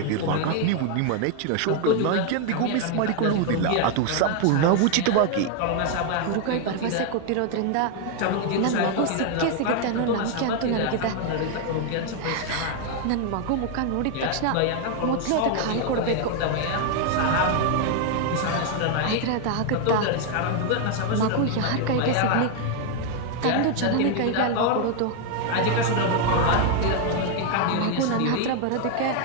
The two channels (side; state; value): both; different; correlation 0.01